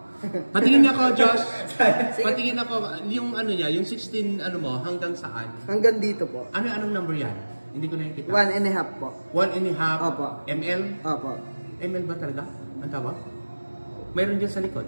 Patingin ako, Josh. Patingin ako, yung ano niya, yung 16 ano mo, hanggang saan? Hanggang dito po. Anong number yan? Hindi ko nakikita. 1.5 po. 1.5 Opo. ml? Opo. ml ba talaga? Ang tawag? Mayroon dyan sa likod.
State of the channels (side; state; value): both; inverted; correlation -1.00